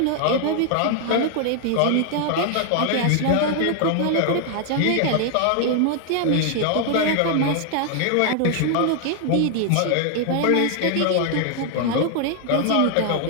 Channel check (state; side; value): different; both; correlation 0.00